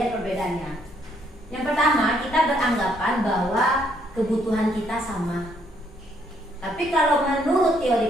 perbedaannya. Yang pertama, kita beranggapan bahwa kebutuhan kita sama. Tapi kalau menurut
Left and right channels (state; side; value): normal; both; correlation 0.70